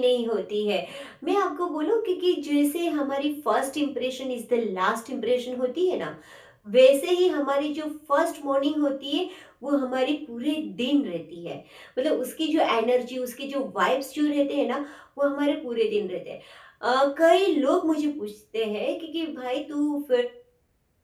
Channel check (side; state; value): both; identical; correlation 1.00